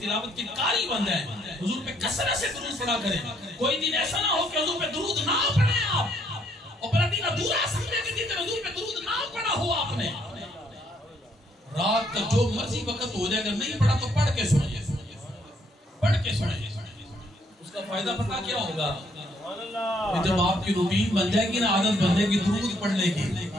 تلاوت کے قاری بن گئے, حضور پہ کثرت سے درود پڑھا کریں. کوئی دن ایسا نہ ہو کہ حضور پہ درود نہ پڑھیں آپ, اور پھر دن ادھورا سمجھے کہ دن حضور پہ درود نہ پڑھا ہو آپ نے. رات کا جو مرضی وقت ہو جائے, اگر نہیں پڑھا تو پڑھ کے سنیں, پڑھ کے سنیں. اس کا فائدہ پتہ کیا ہوگا؟ جب آپ کی روٹین بن جائے گی نا, عادت بن جائے گی درود پڑھنے کی,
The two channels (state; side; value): normal; both; correlation 0.69